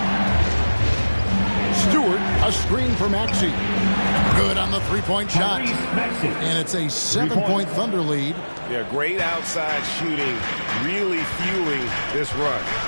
Stewart, a screen for Maxey. Good on the three-point shot. And it's a 7-point Thunder lead. Yeah, great outside shooting, really fueling this run.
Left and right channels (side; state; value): both; inverted; correlation -1.00